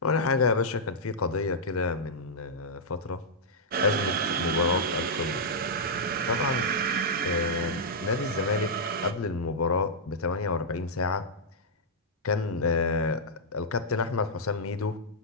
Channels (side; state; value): both; normal; correlation -0.09